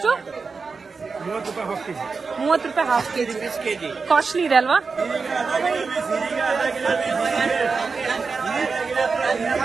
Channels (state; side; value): quieter; left; 4.7 dB